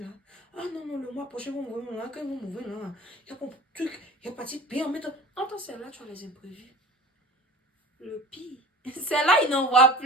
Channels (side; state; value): both; normal; correlation 0.40